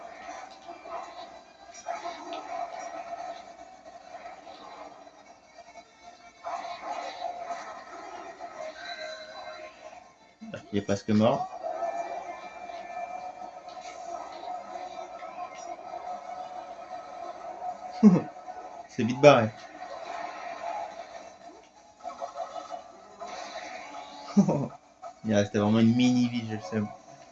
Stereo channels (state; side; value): identical; both; correlation 1.00